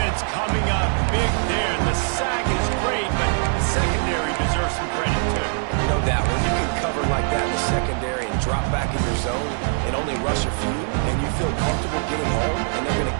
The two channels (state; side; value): silent; left; 57 dB below the other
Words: coming up big there. The sack is great, but the secondary deserves some credit, too. No doubt. When you can cover like that in the secondary and drop back in your zone and only rush a few, and you feel comfortable getting home, and they're going to